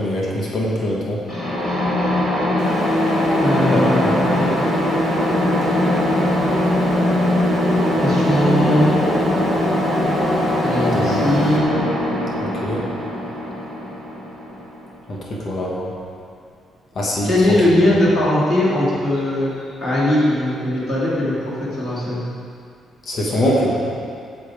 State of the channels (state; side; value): normal; both; correlation 0.78